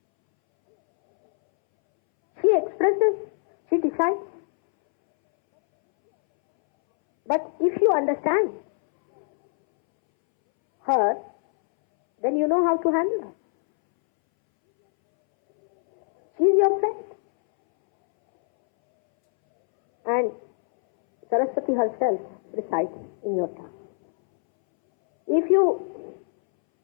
She expresses, she decides. But if you understand her, then you know how to handle her. She is your friend. And Saraswati herself resides in your tongue. If you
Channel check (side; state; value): right; silent; 63 dB below the other